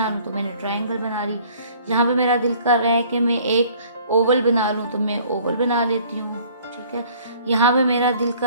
लूँ, तो मैंने ट्राइंगल बना ली। यहाँ पे मेरा दिल कर रहा है कि मैं एक ओवल बना लूँ, तो मैं ओवल बना लेती हूँ, ठीक है। यहाँ पे मेरा दिल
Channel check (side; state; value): both; inverted; correlation -0.55